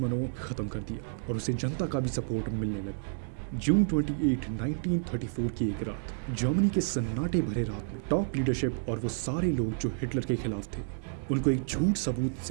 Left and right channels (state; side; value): silent; left; digital silence